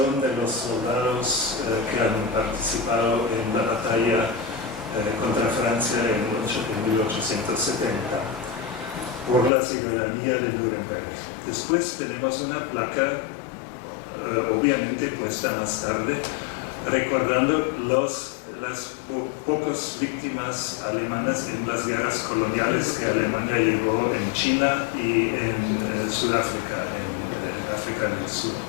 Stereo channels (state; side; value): drops out; right; at 9.5 s